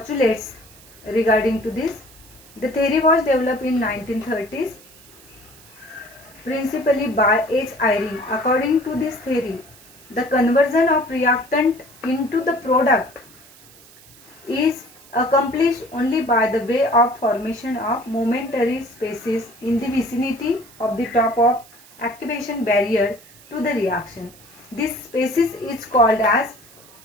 regarding to this. The theory was developed in 1930s principally by H. Eyring. According to this theory, the conversion of reactant into the product is accomplished only by the way of formation of momentary spaces in the vicinity of the top of activation barrier to the reaction. This spaces is called as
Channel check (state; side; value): noise; right; hiss, 23 dB below the sound